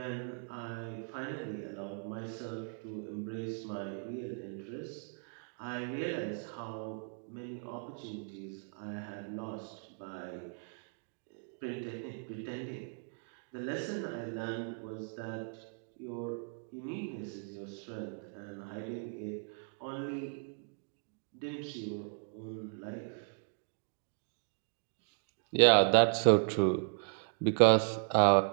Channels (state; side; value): silent; left; 53 dB below the other